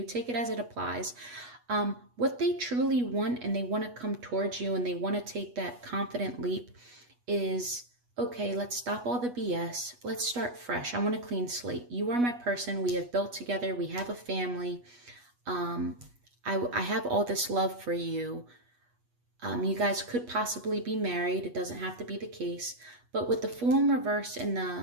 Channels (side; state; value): left; late; 8.2 ms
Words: Take it as it applies. What they truly want, and they want to come towards you and they want to take that confident leap, is, okay, let's stop all the BS. Let's start fresh. I want a clean slate. You are my person. We have built together. We have a family. I have all this love for you. You guys could possibly be married. It doesn't have to be the case. But with the Fool in reverse and